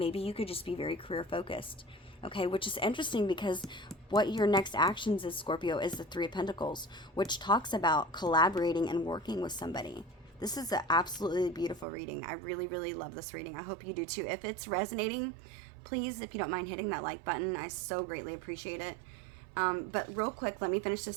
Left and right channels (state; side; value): drops out; left; at 11.9 s